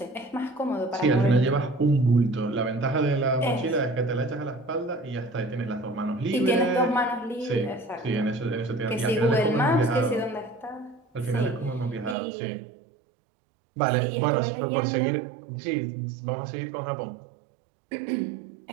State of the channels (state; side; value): drops out; left; at 12.2 s